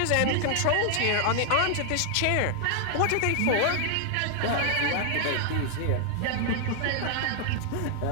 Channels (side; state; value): both; different; correlation 0.00